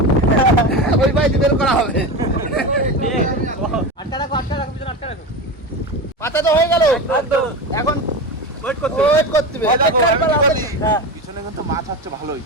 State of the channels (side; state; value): both; normal; correlation 0.23